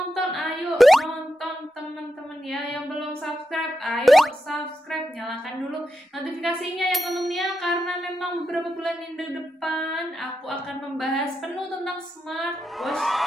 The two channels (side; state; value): both; normal; correlation 0.87